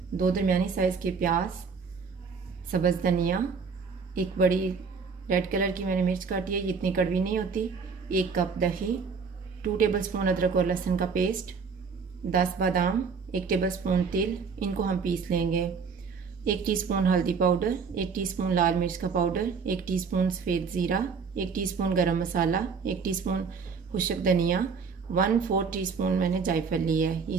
2 दरमियानी साइज़ के प्याज, सब्ज़ धनिया, एक बड़ी रेड कलर की मैंने मिर्च काटी है, इतनी कड़वी नहीं होती, 1 कप दही, 2 टेबलस्पून अदरक और लहसुन का पेस्ट, 10 बादाम, 1 टेबलस्पून तेल, इनको हम पीस लेंगे। 1 टीस्पून हल्दी पाउडर, 1 टीस्पून लाल मिर्च का पाउडर, 1 टीस्पून सफ़ेद ज़ीरा, 1 टीस्पून गरम मसाला, 1 टीस्पून खुश्क धनिया, 1/4 टीस्पून मैंने जायफल लिया है,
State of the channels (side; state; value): left; quieter; 5.5 dB